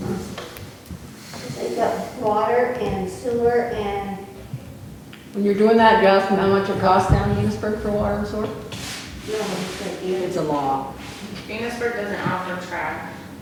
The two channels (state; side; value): identical; both; correlation 1.00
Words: They've got water and sewer and, When you're doing that, you ask them how much it costs down in Enosburg for water and sewer? It's a law. Enosburg doesn't offer trash.